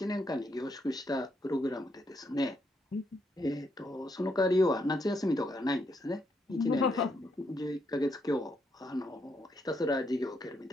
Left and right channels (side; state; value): both; normal; correlation 0.77